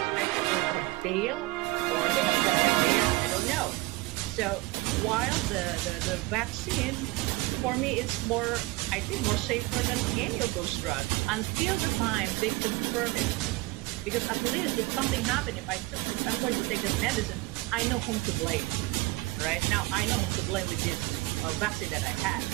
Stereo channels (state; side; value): quieter; left; 22.0 dB